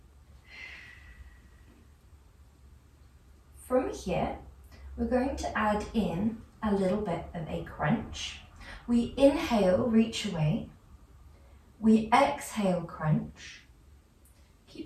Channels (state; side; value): identical; both; correlation 1.00